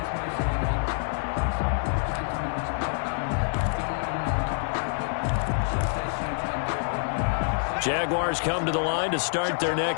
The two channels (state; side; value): silent; right; digital silence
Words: Jaguars come to the line to start their